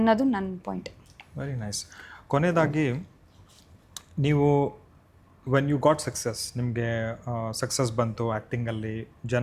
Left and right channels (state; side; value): identical; both; correlation 1.00